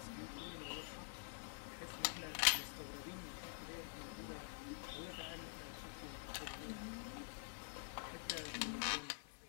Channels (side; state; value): right; silent; digital silence